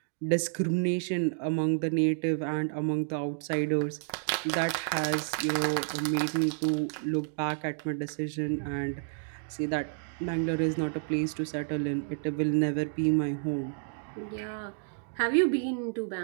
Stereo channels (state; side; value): silent; left; digital silence